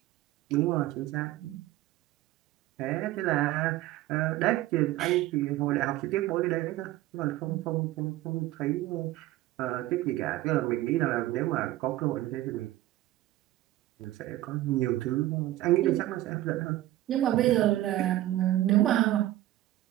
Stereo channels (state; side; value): quieter; left; 15.5 dB